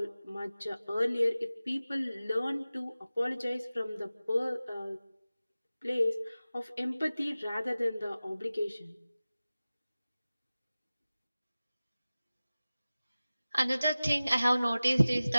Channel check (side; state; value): both; inverted; correlation -0.96